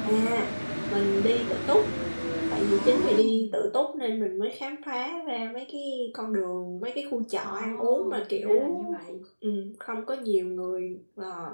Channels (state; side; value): inverted; both; correlation -1.00